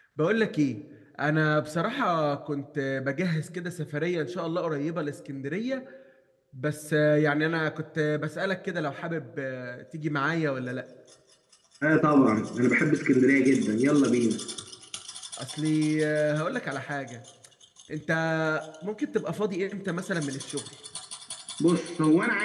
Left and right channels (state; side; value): identical; both; correlation 1.00